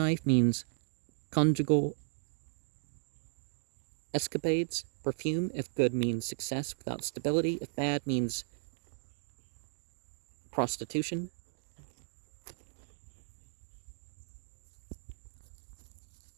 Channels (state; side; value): silent; left; digital silence